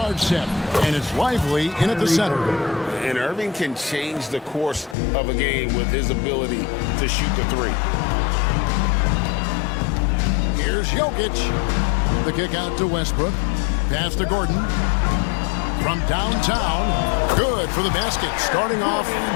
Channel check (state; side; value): drops out; right; at 5.0 s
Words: set. And it's Lively in at the center. And Irving can change the course of a game with his ability to shoot the three. Here's Jokic. The kick out to Westbrook. Pass to Gordon. From downtown. Good for the basket. Starting off